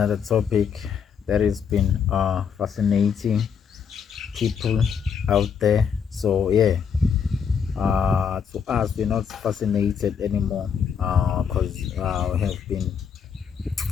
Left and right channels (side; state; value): right; quieter; 7.1 dB